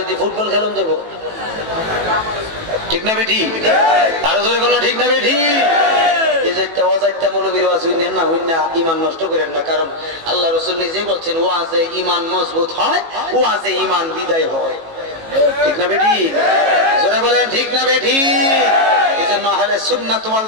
দিয়ে ফুটবল খেলুন দেবো, ঠিক না বেঠি? আরো জোরে কোনো ঠিক না বেঠি? ইমান নষ্ট করেন না, কারণ আল্লাহ রাসূল নিজেই বলছেন, ওয়াজে ইমান মজবুত হয়, ওয়াজে ইমান বিদায় হয়, ঠিক না বেঠি? জোরে বলেন ঠিক না বেঠি? এজন্য আহলে সুন্নাত ওয়াল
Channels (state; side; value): late; left; 18 ms